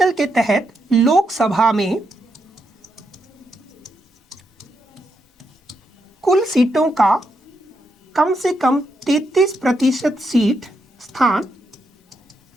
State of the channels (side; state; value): both; normal; correlation 0.81